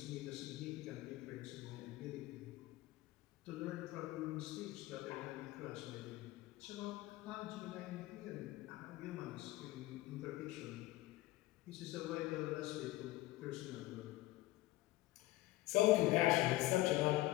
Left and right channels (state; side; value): quieter; right; 17.3 dB